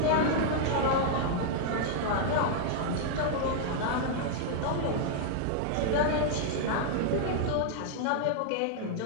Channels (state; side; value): different; both; correlation -0.01